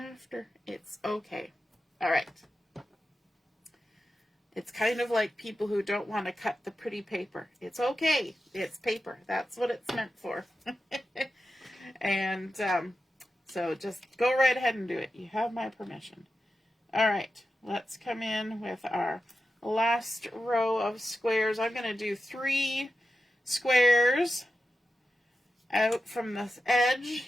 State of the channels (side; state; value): both; normal; correlation 0.91